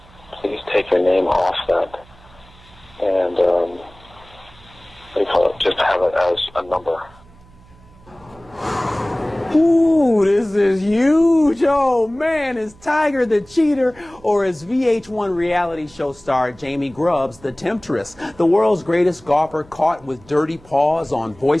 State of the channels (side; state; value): right; noise; hum, 25 dB below the sound